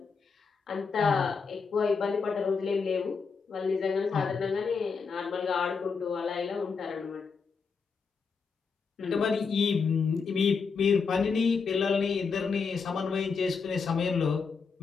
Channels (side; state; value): right; quieter; 5.3 dB